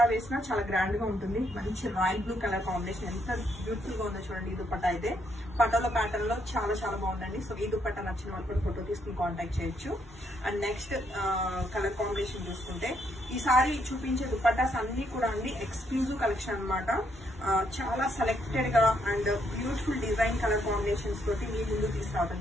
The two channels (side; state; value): both; normal; correlation 0.74